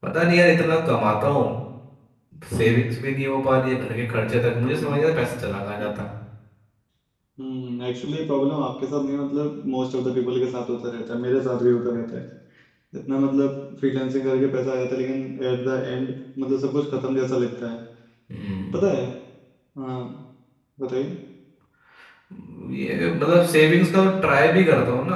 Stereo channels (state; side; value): identical; both; correlation 1.00